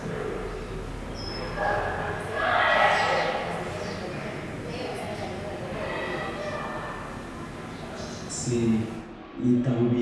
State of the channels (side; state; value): both; identical; correlation 1.00